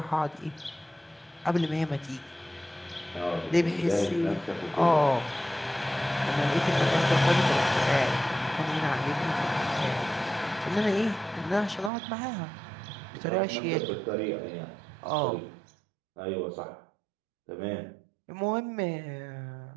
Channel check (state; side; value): drops out; left; at 11.9 s